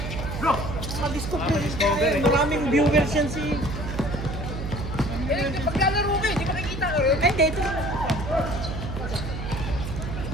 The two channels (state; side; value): noise; right; hum, 5 dB below the sound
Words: Bro, ma-discover Ma-discover eh. Maraming viewers yan si... Eh, paglalaro ka eh, di makikita ka rin. Ay, hindi, ito.